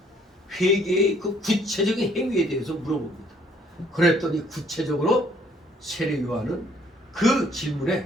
회개의 그 구체적인 행위에 대해서 물어봅니다. 그랬더니 구체적으로 세례 요한은 그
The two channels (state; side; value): normal; both; correlation 0.62